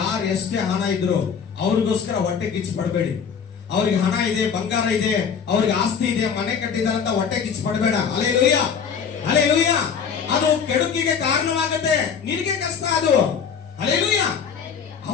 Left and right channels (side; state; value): right; quieter; 6.8 dB